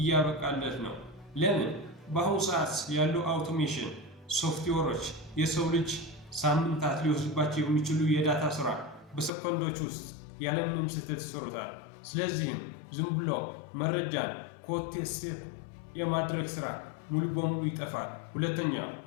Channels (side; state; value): right; drops out; at 9.3 s